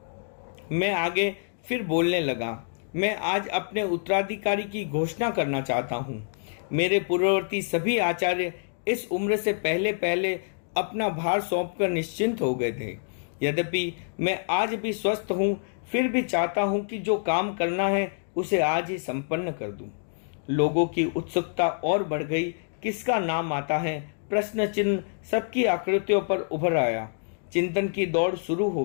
मैं आगे फिर बोलने लगा। मैं आज अपने उत्तराधिकारी की घोषणा करना चाहता हूँ। मेरे पूर्ववर्ती सभी आचार्य इस उम्र से पहले पहले अपना भार सौंपकर निश्चिंत हो गए थे। यद्यपि मैं आज भी स्वस्थ हूँ, फिर भी चाहता हूँ कि जो काम करना है उसे आज ही संपन्न कर दूं। लोगों की उत्सुकता और बढ़ गई। किसका नाम आता है, प्रश्न चिन्ह सबकी आकृतियों पर उभर आया। चिंतन की दौड़ शुरू हो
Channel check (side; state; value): right; silent; digital silence